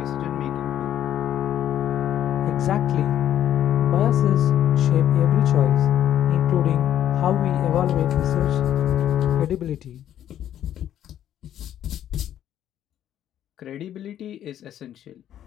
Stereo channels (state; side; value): quieter; right; 11.0 dB